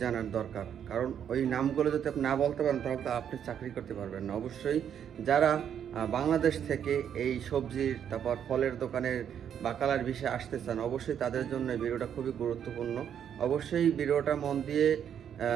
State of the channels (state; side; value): quieter; left; 8.8 dB